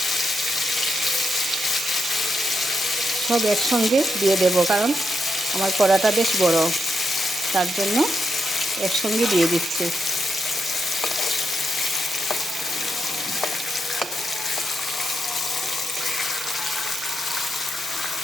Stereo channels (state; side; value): normal; both; correlation 0.83